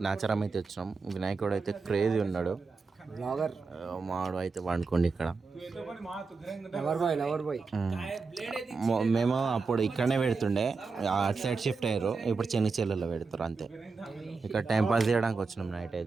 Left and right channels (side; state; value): left; quieter; 4.5 dB